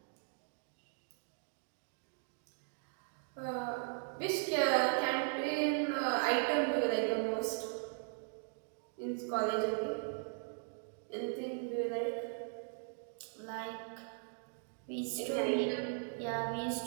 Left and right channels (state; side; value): silent; left; 52 dB below the other